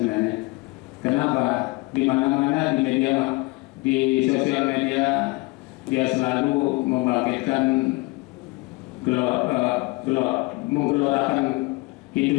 Kenapa? Di mana-mana di media, di sosial media dia selalu membangkitkan menggelorakan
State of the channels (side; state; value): right; quieter; 24.4 dB